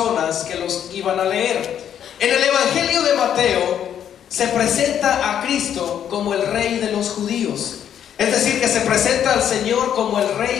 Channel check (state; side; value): quieter; right; 9.4 dB